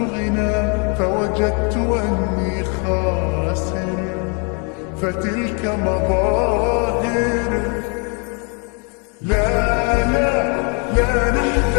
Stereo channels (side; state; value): right; quieter; 36.6 dB